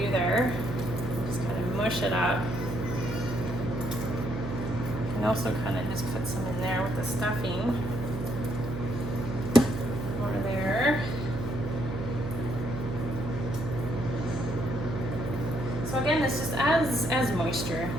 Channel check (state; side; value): noise; right; hum, 6 dB below the sound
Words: there. Just kind of mush it up. And also kind of just put some in there with the stuffing. More there. So again, this just adds moisture